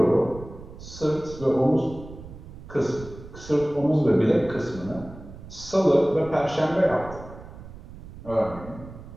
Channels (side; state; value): right; noise; rumble, 15 dB below the sound